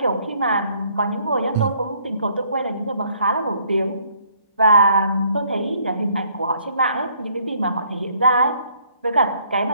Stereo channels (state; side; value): inverted; both; correlation -0.64